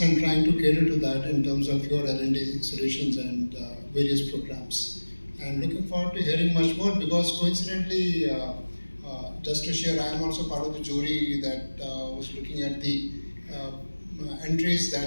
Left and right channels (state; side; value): inverted; both; correlation -1.00